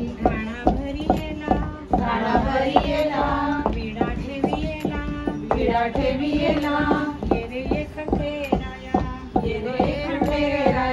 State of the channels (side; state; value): both; identical; correlation 1.00